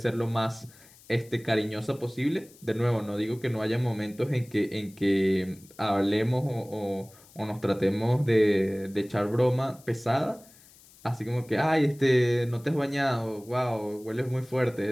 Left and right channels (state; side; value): noise; left; hiss, 25 dB below the sound